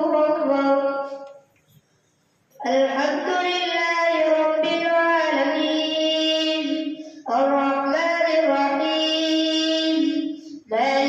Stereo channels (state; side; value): identical; both; correlation 1.00